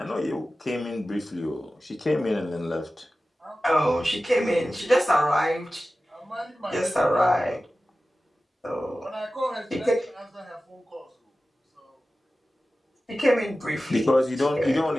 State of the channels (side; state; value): both; normal; correlation 0.95